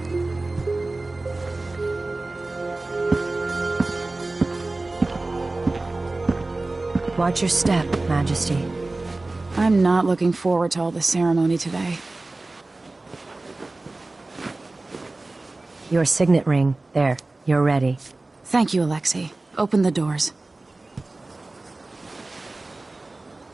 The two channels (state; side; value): quieter; left; 3.1 dB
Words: Watch your step, Majesty. I'm not looking forward to all the ceremony today. Your signet ring. There, you're ready. Thank you, Alexei. Open the doors.